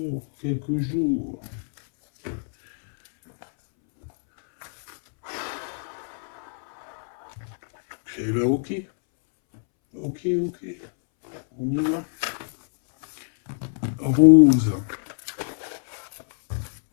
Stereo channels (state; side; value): silent; right; 62 dB below the other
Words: quelques jours. Eh ben, ok. Ok. On y va. Rose.